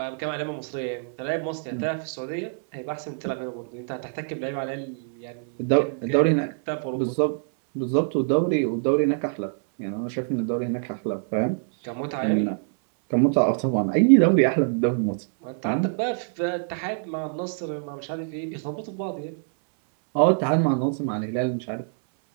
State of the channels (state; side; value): silent; left; 62 dB below the other